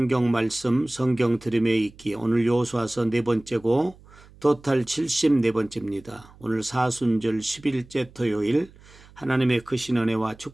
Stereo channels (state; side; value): noise; right; hum, 24 dB below the sound